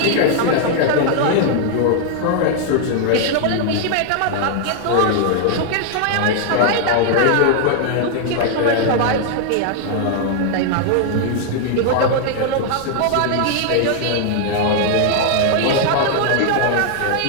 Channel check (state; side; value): different; both; correlation 0.00